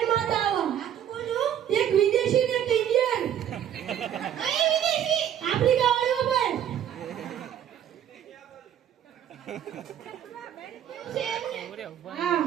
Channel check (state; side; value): quieter; left; 10.2 dB